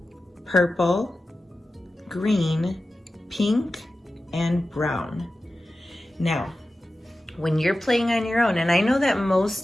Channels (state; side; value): normal; both; correlation 0.94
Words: purple, green, pink, and brown. Now, when you're playing on your own, and I know that